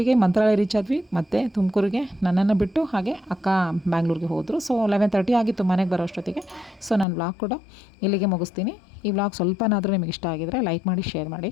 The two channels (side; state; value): right; drops out; at 7.1 s